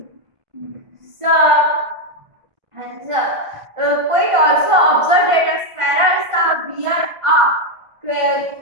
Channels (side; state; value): left; late; 1.5 ms